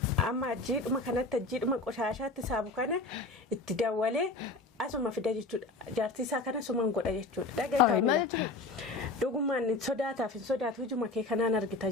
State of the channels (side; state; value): right; quieter; 3.3 dB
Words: Amma ajjiidhuma kanatti ajjiidhuma qoshaashaatti saabu kana itti dawwalee asuma fida jechuudha. Jaartii isaa kana sumaan godha jechuudha. Dhagaa kaamila. Dhugumaan sodaataaf hin sodaatu hujuma kee kanaan argita